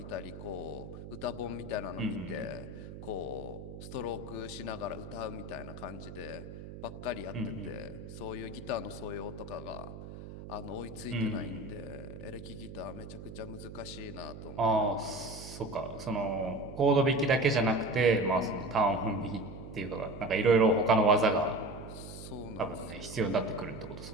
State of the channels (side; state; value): right; noise; hum, 11 dB below the sound